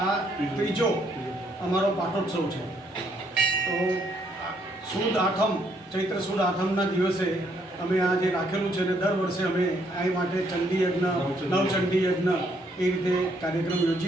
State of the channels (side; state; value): both; normal; correlation 0.70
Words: આ ત્રીજો અમારો પાટોત્સવ છે. તો સુદ આઠમ, ચૈત્ર સુદ આઠમના દિવસે અમે આ જે રાખેલું છે, ને દર વર્ષે અમે આ માટે ચંડી યજ્ઞ, નવચંડી યજ્ઞ એ રીતે કાર્યક્રમ